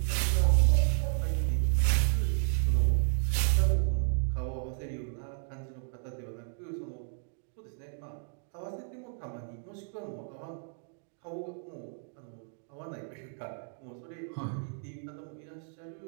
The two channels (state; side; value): silent; left; 56 dB below the other